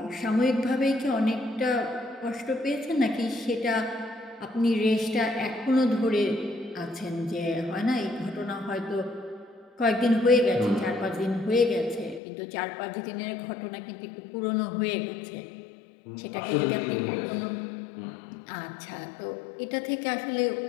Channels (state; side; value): drops out; right; at 12.2 s